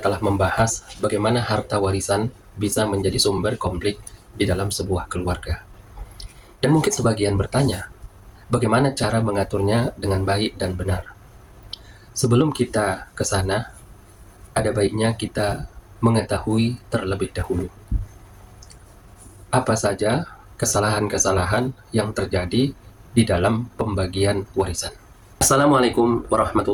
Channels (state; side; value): identical; both; correlation 1.00